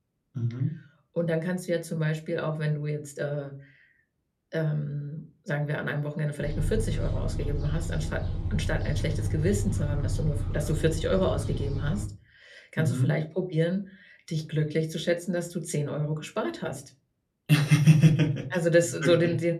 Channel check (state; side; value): identical; both; correlation 1.00